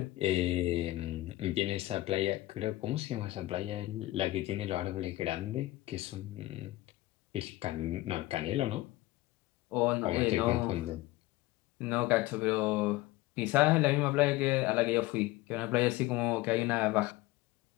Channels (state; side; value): quieter; right; 17.9 dB